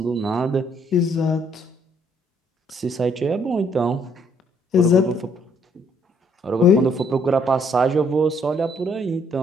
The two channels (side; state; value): both; normal; correlation 0.66